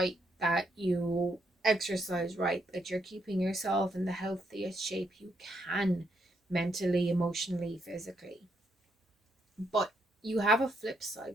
that you exercise right, that you're keeping yourself in the healthiest shape you can, mentally, emotionally, physically. But you have a flip side,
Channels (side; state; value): both; normal; correlation 0.76